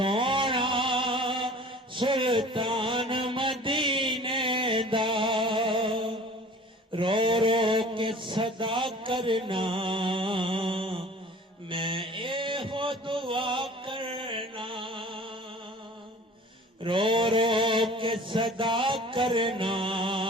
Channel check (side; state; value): both; normal; correlation 0.45